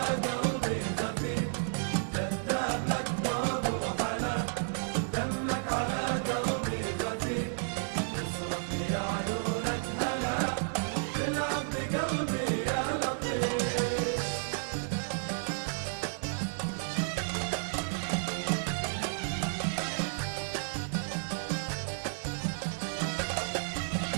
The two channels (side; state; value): left; silent; digital silence